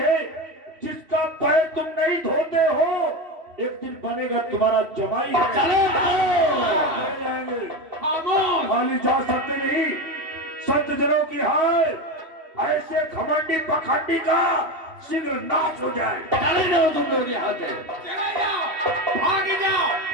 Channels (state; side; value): late; left; 3.0 ms